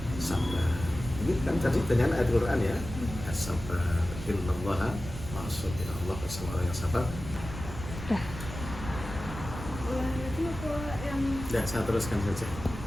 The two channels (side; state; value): right; noise; rumble, 9 dB below the sound